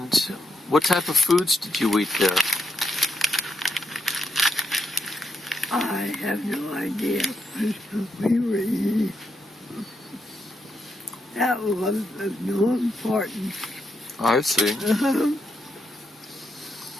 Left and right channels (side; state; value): both; normal; correlation 0.82